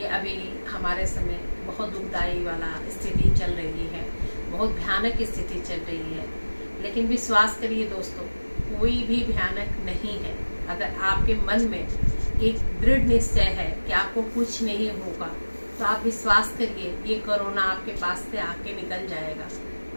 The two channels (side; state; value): both; inverted; correlation -1.00